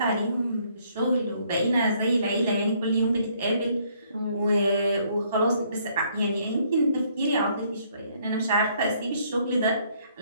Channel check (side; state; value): both; inverted; correlation -0.66